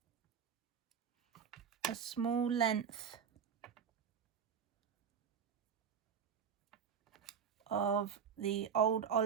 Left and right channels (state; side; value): quieter; left; 7.4 dB